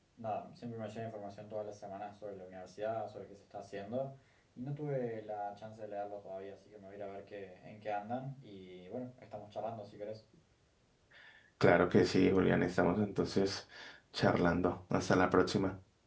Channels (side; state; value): both; identical; correlation 1.00